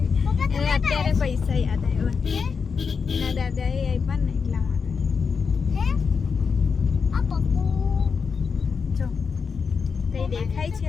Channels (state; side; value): quieter; right; 5.6 dB